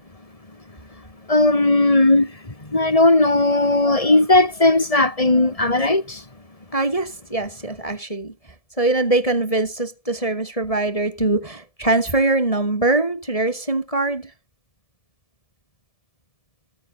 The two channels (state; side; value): late; right; 1.7 ms